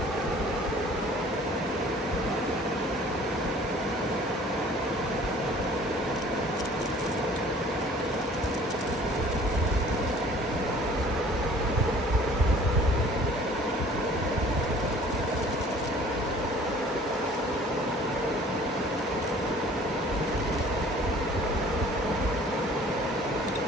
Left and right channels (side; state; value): both; normal; correlation 0.51